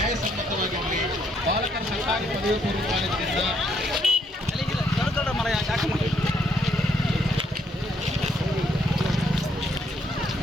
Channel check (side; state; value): both; normal; correlation 0.72